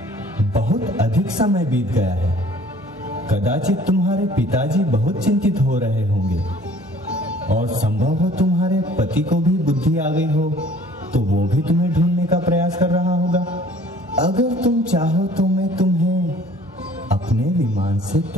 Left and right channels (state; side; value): normal; both; correlation 0.53